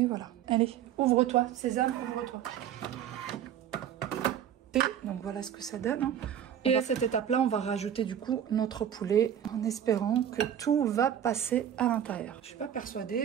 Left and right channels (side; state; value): left; quieter; 9.8 dB